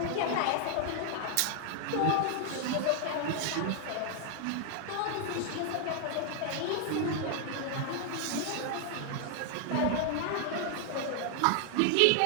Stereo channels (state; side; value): different; both; correlation 0.00